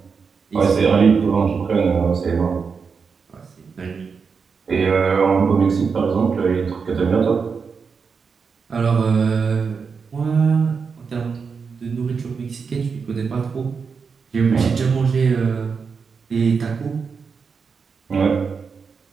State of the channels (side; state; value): left; quieter; 5.5 dB